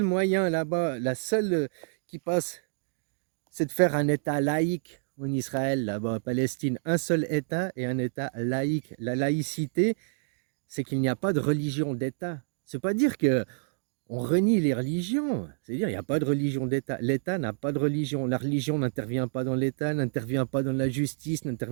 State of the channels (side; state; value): left; silent; digital silence